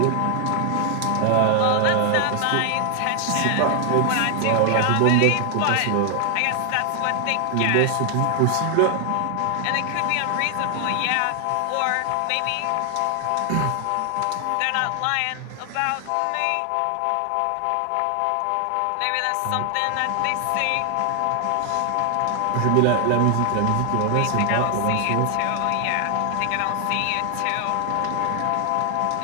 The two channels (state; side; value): different; both; correlation 0.00